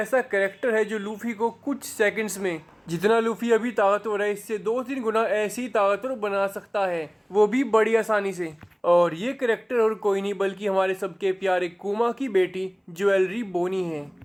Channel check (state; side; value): identical; both; correlation 1.00